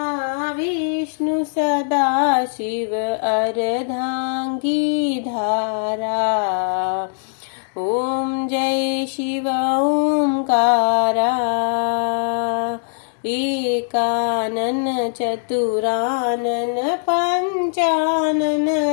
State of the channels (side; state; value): right; silent; digital silence